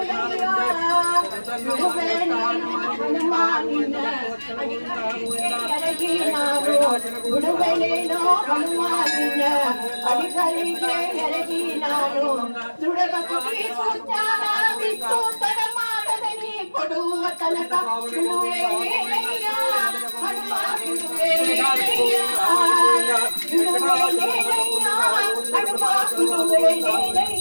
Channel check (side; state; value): both; inverted; correlation -1.00